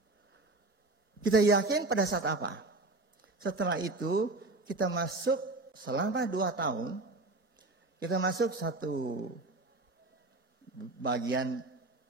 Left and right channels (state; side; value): quieter; left; 3.0 dB